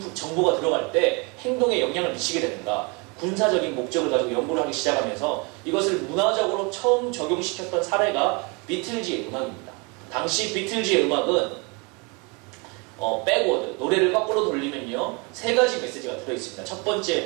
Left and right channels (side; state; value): left; quieter; 30.5 dB